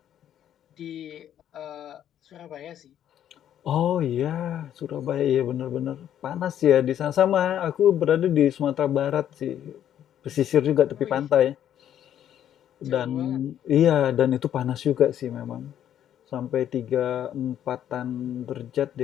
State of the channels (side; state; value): right; quieter; 10.5 dB